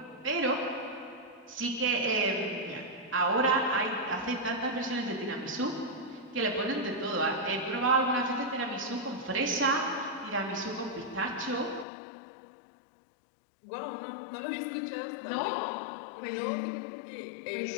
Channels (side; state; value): right; drops out; at 11.9 s